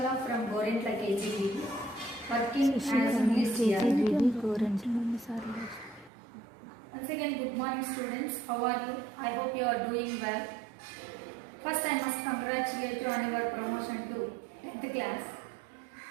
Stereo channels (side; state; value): left; drops out; at 6.1 s